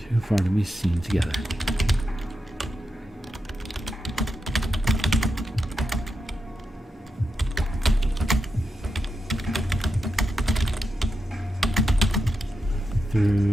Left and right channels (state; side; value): normal; both; correlation 0.87